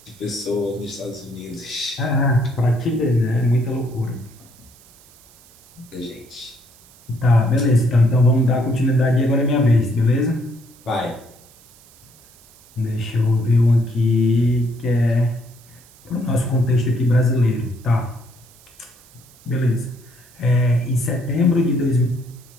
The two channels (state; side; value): noise; right; hiss, 26 dB below the sound